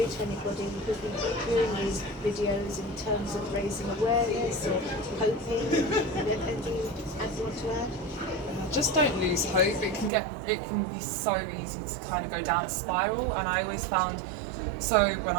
to anybody who's been viewing these videos in terms of raising awareness or hoping? Anything you want to add? Just don't lose hope. It can be so easy to kind of go down a spiral, and I always found, so when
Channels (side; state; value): left; drops out; at 10.1 s